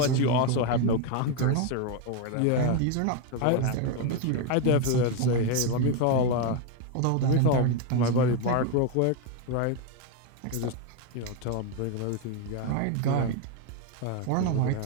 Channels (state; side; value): different; both; correlation 0.02